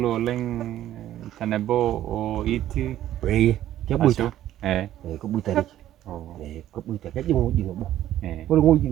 leng tanebo o iti. Kebuita. Kebuita ni. Kebuita kaji ngoji ngobo. Kalau ngoji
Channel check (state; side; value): quieter; left; 12.6 dB